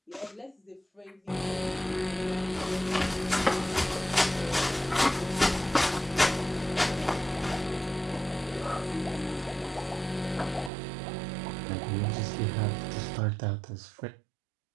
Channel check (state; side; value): drops out; left; at 10.7 s